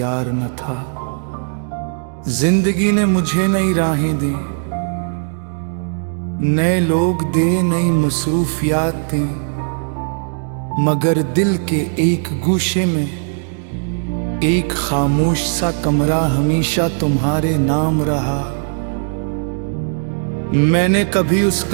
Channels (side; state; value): left; silent; digital silence